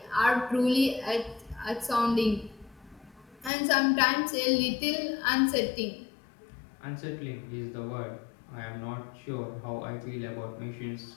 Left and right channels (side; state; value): right; drops out; at 3.5 s